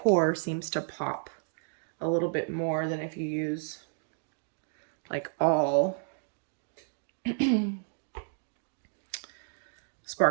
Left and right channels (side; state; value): left; silent; digital silence